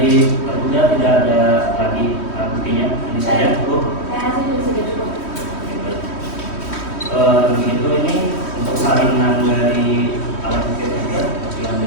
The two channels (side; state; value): right; late; 3.1 ms